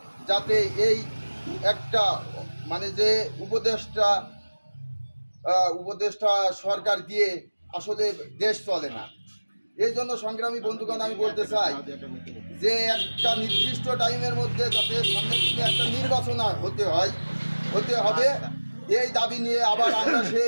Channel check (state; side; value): inverted; both; correlation -1.00